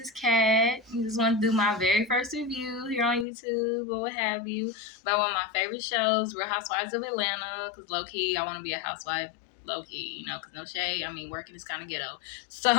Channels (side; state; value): right; drops out; at 3.2 s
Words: Kat. I just want to do my very first review here on YouTube or what have you about one of my favorite shows, Real Housewives of Atlanta. Because low-key, I want to be a housewife. Low-key, because no shade. I mean, working is kind of ghetto.